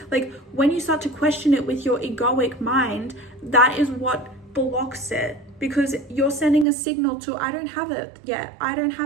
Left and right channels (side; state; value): left; drops out; at 6.7 s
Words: Like when you start to question it with your egoic mind, that is what blocks it, because you're sending a signal to, I don't have it yet. I don't